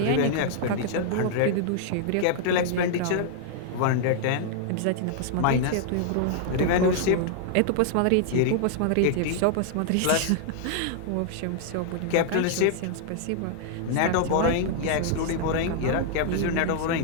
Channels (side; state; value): both; different; correlation -0.01